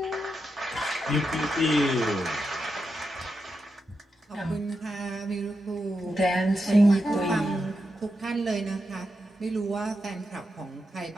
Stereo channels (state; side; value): normal; both; correlation 0.86